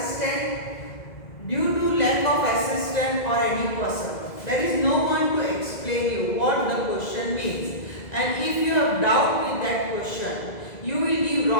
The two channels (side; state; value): right; late; 2.0 ms